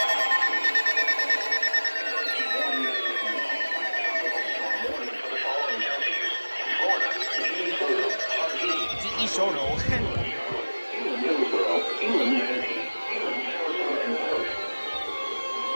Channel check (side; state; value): both; inverted; correlation -1.00